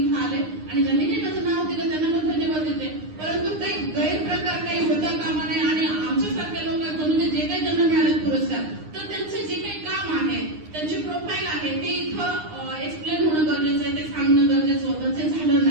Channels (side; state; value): left; late; 9.7 ms